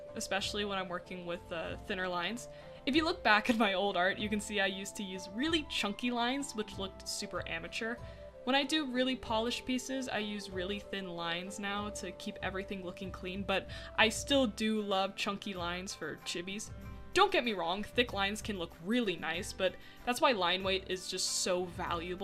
especially when I'm working with thinner lines. If you look back at my old art, you can see I used to use really chunky lines, which looked super amateur. When I do really polished pieces, I use really thin lines now to keep everything looking clean, but I still do love chunky lines for chibis. Don't get me wrong, thick lines can look really nice, but that's why line weight is just so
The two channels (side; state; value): both; identical; correlation 1.00